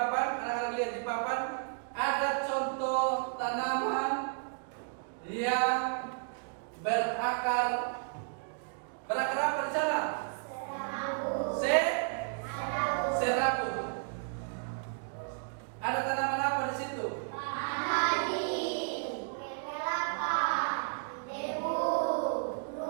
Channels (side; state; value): left; silent; digital silence